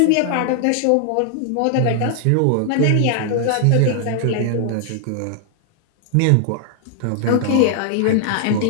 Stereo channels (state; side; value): different; both; correlation 0.00